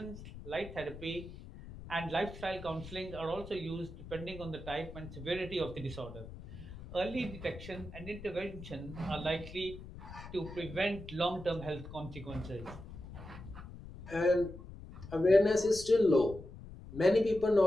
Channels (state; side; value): noise; left; rumble, 14 dB below the sound